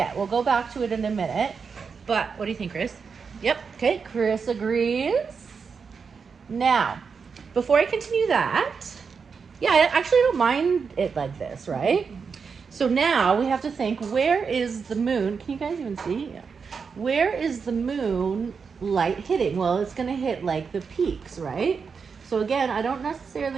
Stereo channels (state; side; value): quieter; left; 5.7 dB